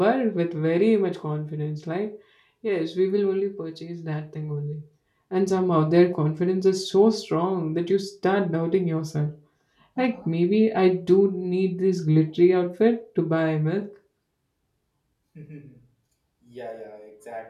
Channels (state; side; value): identical; both; correlation 1.00